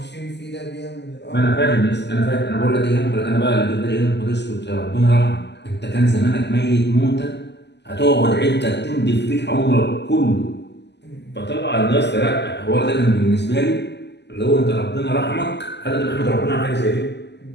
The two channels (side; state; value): right; late; 0.50 ms